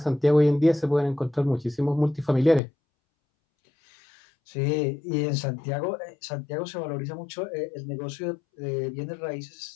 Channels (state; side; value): drops out; right; at 2.6 s